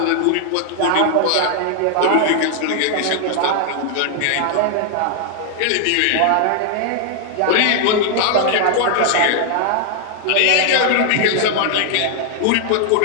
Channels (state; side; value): different; both; correlation 0.00